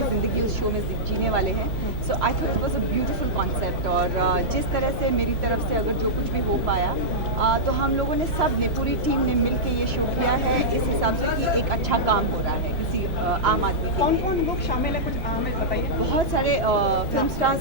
ज़िंदगी उस शो में जीने वाले हैं। So I thought it was a beautiful concept, और जिस तरह से मेरी तरफ से अगर जो कुछ भी हो पाया, तो हम लोगों ने सब ने, पूरी टीम ने मिल के ये शो किया है इस हिसाब से कि एक अच्छा काम हो रहा है किसी आम आदमी के कौन लिए। कौन लोग शामिल हैं, कुछ हमें बताइए। बहुत सारे फिल्म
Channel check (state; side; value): normal; both; correlation -0.11